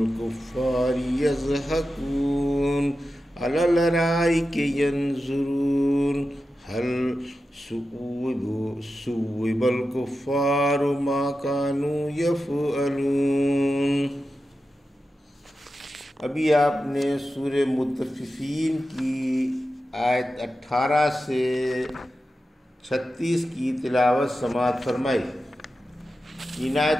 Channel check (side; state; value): both; normal; correlation 0.91